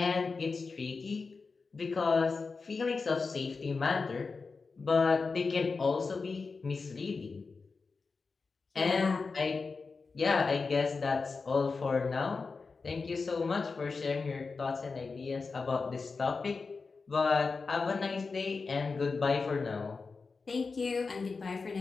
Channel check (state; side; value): quieter; right; 4.4 dB